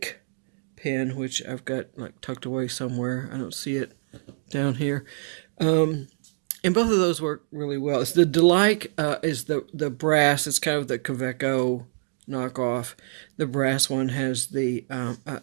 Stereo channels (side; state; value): left; silent; digital silence